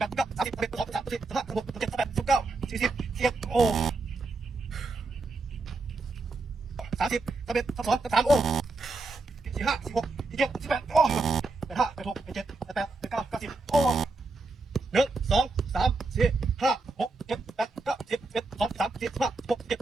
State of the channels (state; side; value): quieter; left; 3.5 dB